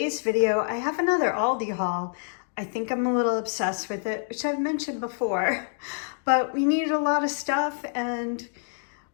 video I have another Aldi haul. I think I'm a little obsessed with it, which I've mentioned before, but we needed a lot of stuff and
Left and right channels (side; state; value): right; silent; digital silence